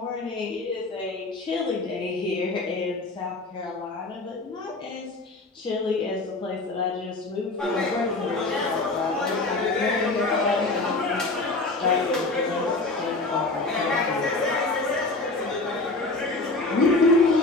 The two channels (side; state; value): right; quieter; 3.2 dB